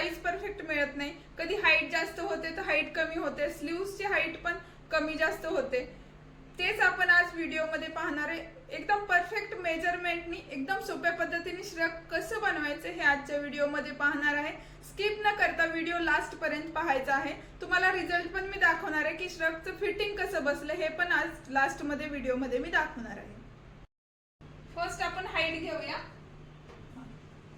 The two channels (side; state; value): both; identical; correlation 1.00